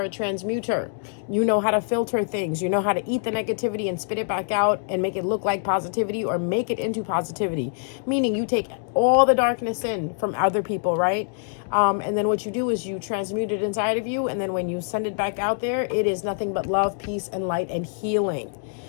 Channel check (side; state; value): right; silent; digital silence